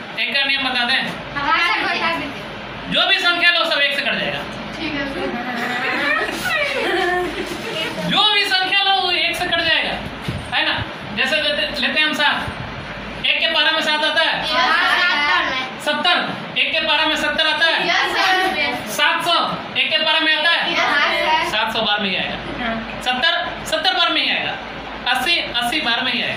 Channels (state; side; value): identical; both; correlation 1.00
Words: एक का नियम बता दें। हाँ सर बता दीजिए। जो भी संख्या लो सब 1 से कट जाएगा। ठीक है सर। जो भी संख्या लो वो 1 से कट जाएगा, है ना। जैसे लेते हैं हम 7, 1 के पारा में 7 आता है 70, 1 के पारा में 70 आता है 700, 1 के पारा में आता है 700 बार में ही आएगा। 70 बार में ही आएगा। 80 बार में ही